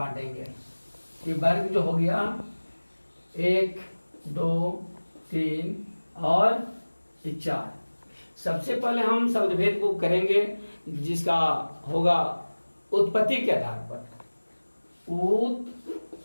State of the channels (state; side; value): inverted; both; correlation -1.00